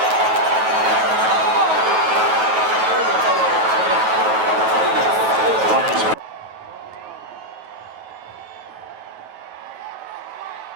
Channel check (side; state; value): left; late; 9.2 ms